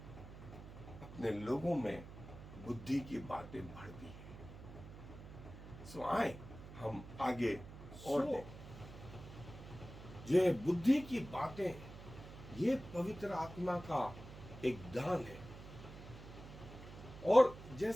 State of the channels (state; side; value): noise; right; hum, 14 dB below the sound